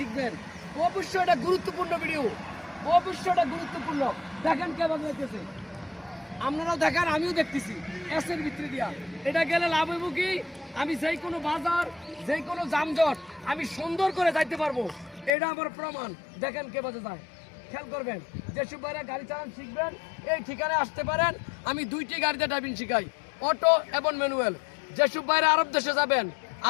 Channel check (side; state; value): right; drops out; at 15.3 s